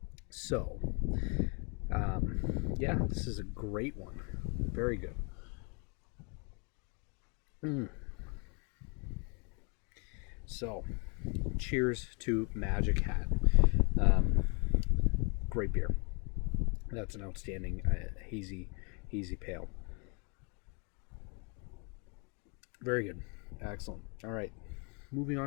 So, Yeah, this is a great one. Very good. So, cheers to Magic Hat. Um, Great beer. That's an outstanding hazy pale. Very good. Excellent. All right. Moving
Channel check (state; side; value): quieter; right; 34.7 dB